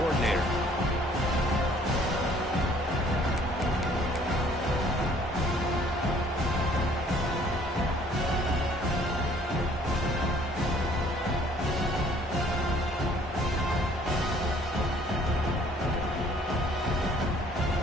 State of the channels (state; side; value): normal; both; correlation 0.58